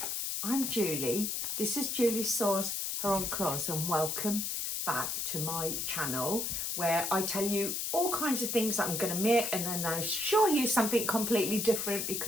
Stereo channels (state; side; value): noise; left; hiss, 2 dB below the sound